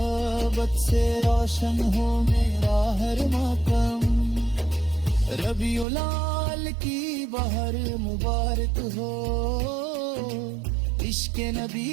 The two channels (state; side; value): drops out; left; at 5.9 s